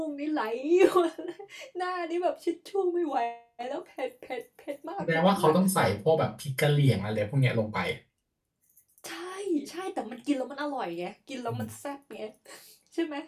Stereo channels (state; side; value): identical; both; correlation 1.00